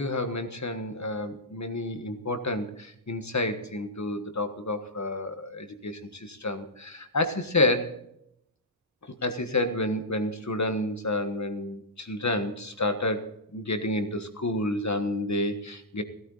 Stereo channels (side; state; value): both; normal; correlation -0.12